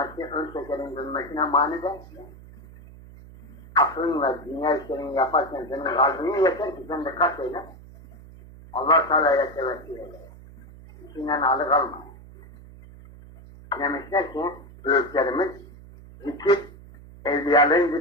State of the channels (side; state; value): right; noise; hum, 19 dB below the sound